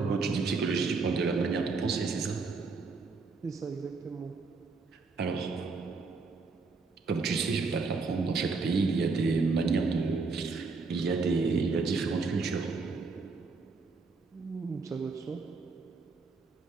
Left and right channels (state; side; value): quieter; left; 4.3 dB